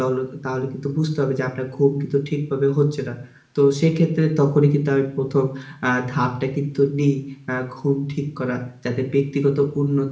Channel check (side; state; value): both; identical; correlation 1.00